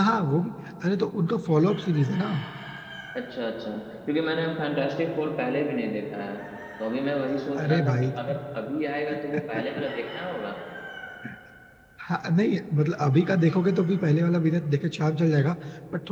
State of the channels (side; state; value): both; identical; correlation 1.00